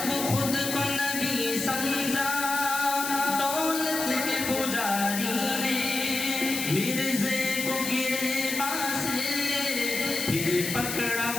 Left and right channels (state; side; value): noise; left; hiss, 4 dB below the sound